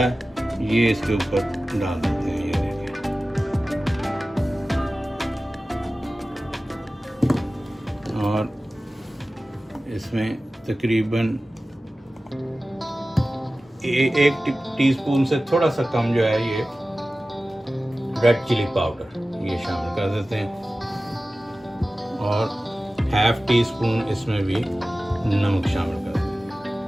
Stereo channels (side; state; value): both; normal; correlation 0.96